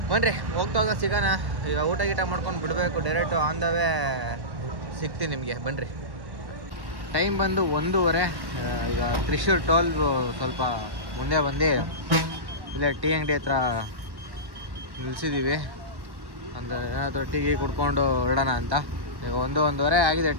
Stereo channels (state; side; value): late; left; 1.1 ms